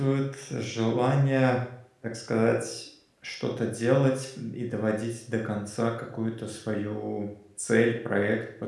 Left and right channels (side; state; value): both; identical; correlation 1.00